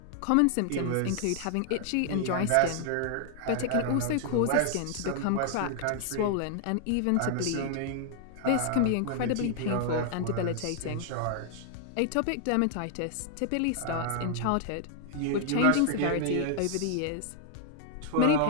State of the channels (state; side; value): different; both; correlation 0.00